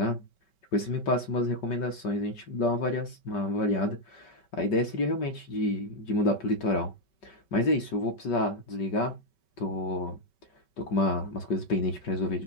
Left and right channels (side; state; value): right; late; 5.2 ms